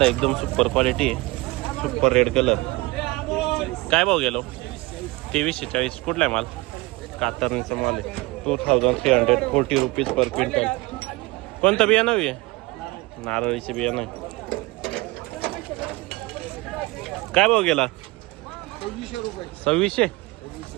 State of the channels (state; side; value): quieter; left; 22.2 dB